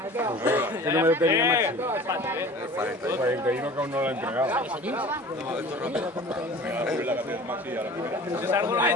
¿Qué número tenía Maxi? El 41 que aún no lo ha entregado.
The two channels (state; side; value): normal; both; correlation 0.42